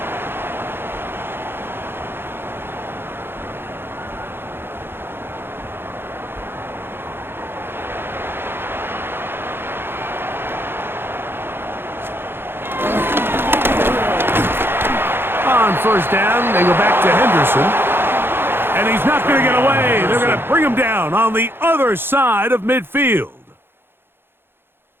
First down, they go back to Henderson. And he's not going to get away. They're going to bring him down on the other side of midfield.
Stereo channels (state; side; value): late; left; 0.10 ms